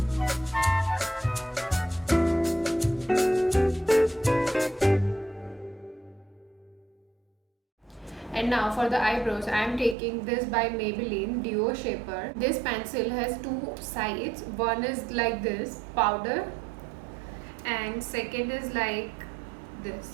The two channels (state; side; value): drops out; left; at 10.0 s